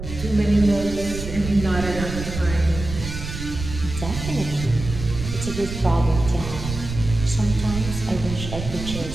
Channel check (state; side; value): noise; right; rumble, 8 dB below the sound